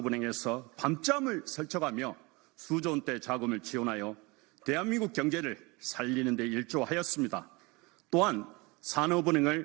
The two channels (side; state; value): left; quieter; 25.7 dB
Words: 밤잠을 설쳐가며 수조 원대 자금을 지원하여 대한민국 경제를 살리는 데 일조하였습니다. 또한